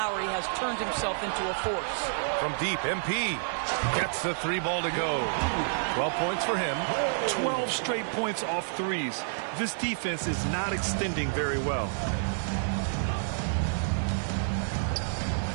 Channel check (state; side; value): silent; left; digital silence